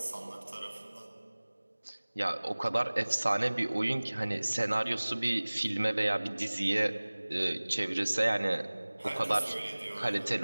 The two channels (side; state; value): both; inverted; correlation -1.00